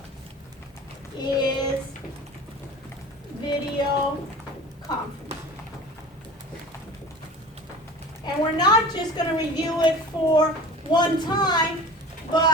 is video conference. And we're not just going to review it for one time,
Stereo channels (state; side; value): normal; both; correlation 0.39